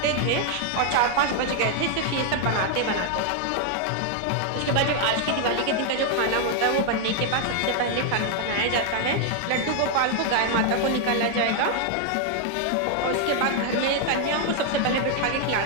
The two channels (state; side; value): different; both; correlation 0.00